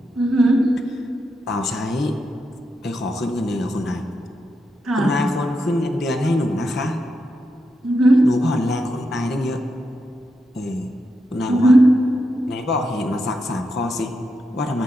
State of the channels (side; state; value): both; normal; correlation 0.85